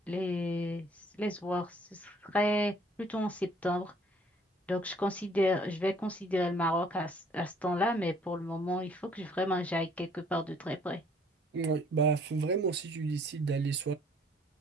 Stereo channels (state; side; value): normal; both; correlation 0.60